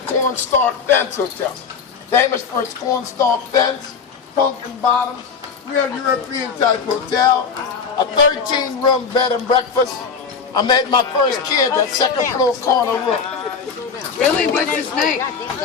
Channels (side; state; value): right; quieter; 5.8 dB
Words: fence hotel. Famous for its cornstalk fence, pumpkin bottoms, real European type hotel, a 13-room bed and breakfast. I made my first kid that second floor corner room. Really? What's his name?